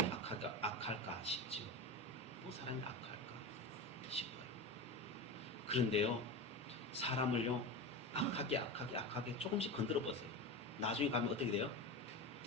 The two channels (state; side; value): normal; both; correlation 0.23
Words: 악할까 싶죠. 뭐 사람이 악할까 싶어요. 그런데요, 사람을요 악하게 조금씩 건드려 보세요. 나중에 가면 어떻게 돼요?